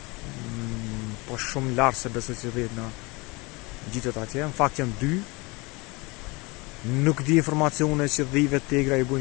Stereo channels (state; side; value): quieter; right; 25.8 dB